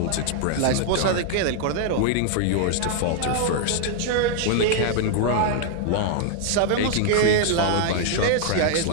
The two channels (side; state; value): both; different; correlation 0.00